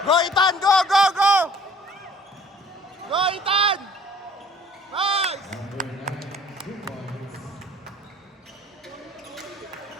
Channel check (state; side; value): normal; both; correlation 0.53